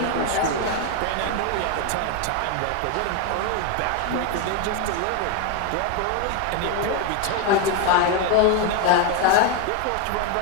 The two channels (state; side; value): different; both; correlation 0.01